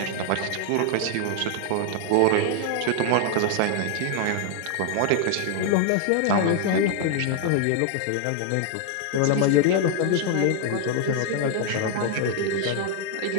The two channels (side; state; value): both; different; correlation 0.00